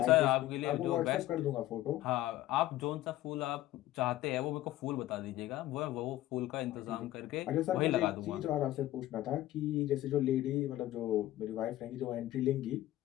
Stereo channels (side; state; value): right; quieter; 14.9 dB